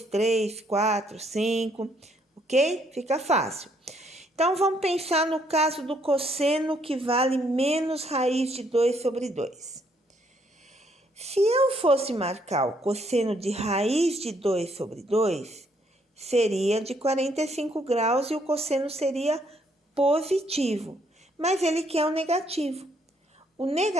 3, 4, 5, ok? Fica fácil. Então, vamos pensar no caso do cosseno que vale menos raiz de 2 sobre 2. Se eu fosse marcar o cosseno de raiz de 2 sobre 2, seria de 45 graus e o cosseno seria positivo, mas ele quer o negativo. O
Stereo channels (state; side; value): normal; both; correlation 0.70